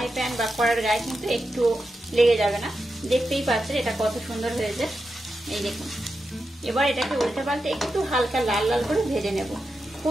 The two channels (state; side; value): normal; both; correlation 0.88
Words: প্যান বা কড়ার গায়ে কিন্তু একটু লেগে যাবে না। দেখতেই পাচ্ছেন এটা কত সুন্দর হয়েছে। এই দেখুন এবার এটাকে উল্টে পাল্টে একটু হালকা লাল লাল করে ভেজে নেব।